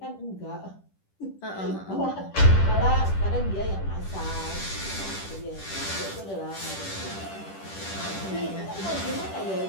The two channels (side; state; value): right; late; 10 ms